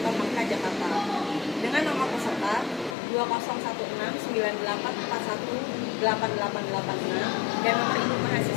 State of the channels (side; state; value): right; drops out; at 3.0 s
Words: Hamka Jakarta dengan nomor peserta 201698418886 dan nomor induk